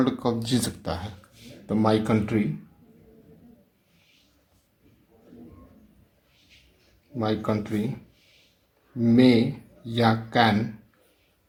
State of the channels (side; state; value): both; identical; correlation 1.00